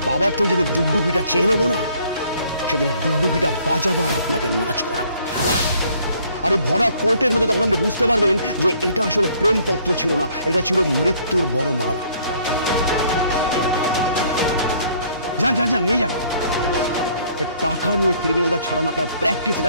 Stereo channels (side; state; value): both; inverted; correlation -0.62